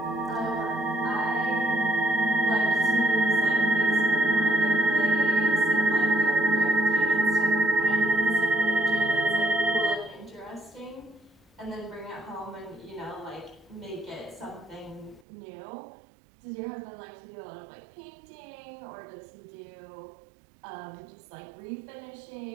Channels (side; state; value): left; drops out; at 15.2 s